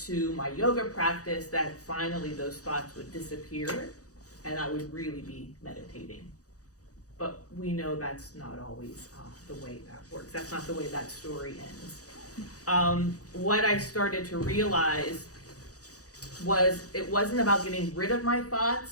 my yoga practice, that finally those thoughts would disappear and I would really be meditating. But we know that's not always the way that works. That's not the way that story ends. What I started to realize was it wasn't about getting rid of my thoughts,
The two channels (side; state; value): right; late; 0.67 ms